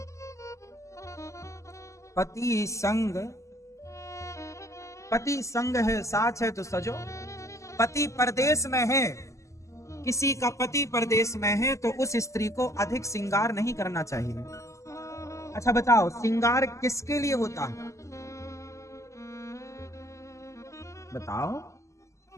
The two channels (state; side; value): late; right; 0.15 ms